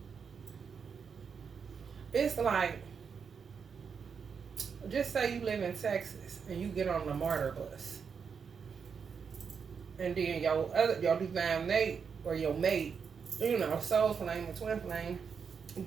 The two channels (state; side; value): quieter; left; 6.3 dB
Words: it's like, just say you live in Texas and you get on the MARTA bus. And then your divine mate or your mate, you know, soul flame or twin flame,